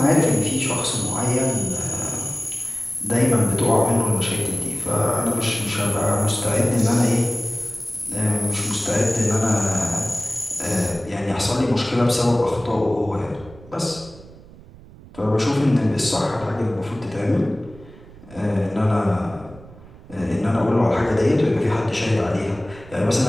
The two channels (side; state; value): right; noise; rumble, 20 dB below the sound